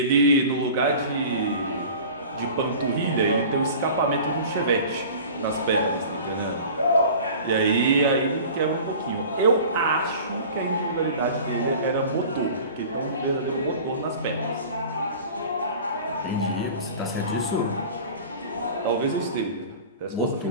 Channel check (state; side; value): inverted; both; correlation -0.40